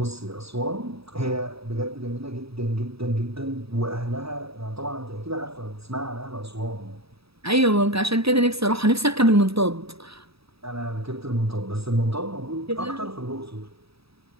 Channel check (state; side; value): late; left; 0.77 ms